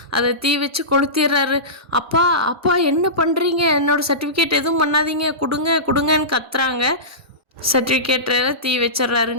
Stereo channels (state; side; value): normal; both; correlation -0.20